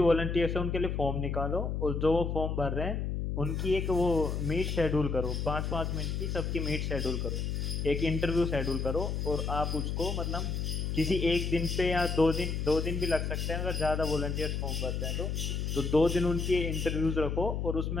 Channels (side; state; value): left; noise; hum, 1 dB below the sound